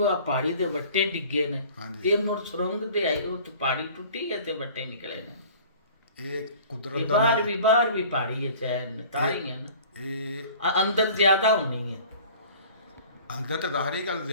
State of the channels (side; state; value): both; inverted; correlation -0.47